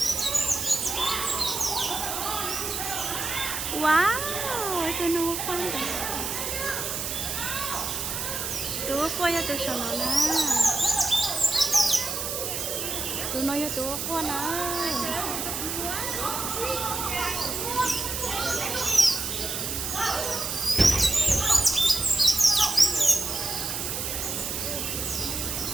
Wow, tôi nó khoan rồi. Tôi coi cho tôi sợ nó nè. Tôi nói cho tôi khoan nè.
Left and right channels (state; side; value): noise; right; hiss, 3 dB below the sound